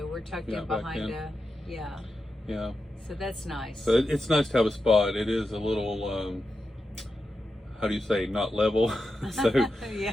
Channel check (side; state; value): both; normal; correlation 0.89